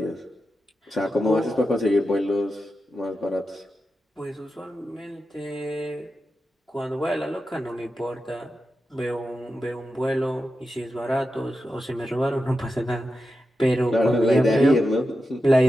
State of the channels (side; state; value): both; normal; correlation 0.90